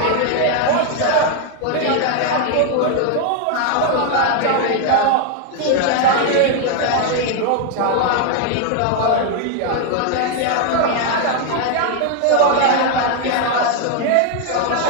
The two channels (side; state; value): both; different; correlation 0.00